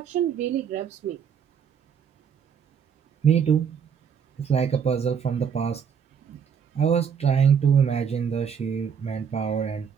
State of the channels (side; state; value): left; quieter; 7.3 dB